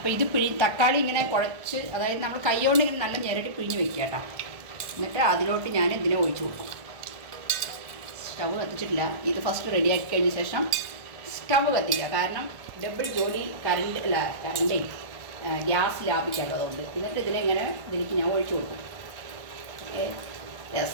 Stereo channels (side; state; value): left; late; 1.5 ms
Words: ഇത് തക്കാളി ഇങ്ങനെ കുഴച്ച്, അതായത് നമ്മൾ കൈകൊണ്ട് ഇങ്ങനെ നല്ല ഞെരടി പിഴിഞ്ഞ് വെക്കുക കേട്ടോ. എന്നിട്ട് അതിലോട്ട് ഞാൻ ഇതിനെ ഒഴിച്ചു കൊടുക്കും. സ്റ്റവ് കത്തിച്ചിട്ടില്ല. ഇത് ഫസ്റ്റ് റെഡിയാക്കി കഴിഞ്ഞ ശേഷം സ്റ്റവ് കത്തിക്കുക. കാരണം ഡബിൾ ജോലി കറണ്ടേ ഗ്യാസ് ലാഭിക്കാമല്ലോ, അതുകൊണ്ട്. എന്നിട്ട് ഇതിലേക്ക് ഞാൻ ഒഴിച്ചു കൊടുക്കും.